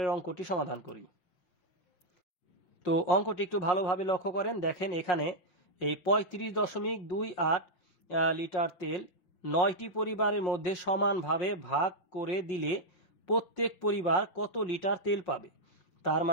অঙ্কটি সমাধান করি। তো অঙ্কটি একটু ভালোভাবে লক্ষ্য করেন। দেখেন, এখানে এই 35.28 লিটার তেল 9টি পরিবারের মধ্যে সমানভাবে ভাগ করে দিলে প্রত্যেক পরিবার কত লিটার তেল পাবে? তার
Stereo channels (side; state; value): right; late; 5.5 ms